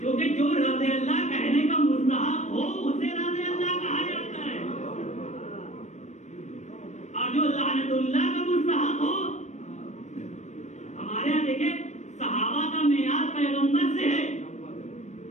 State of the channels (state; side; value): late; right; 0.34 ms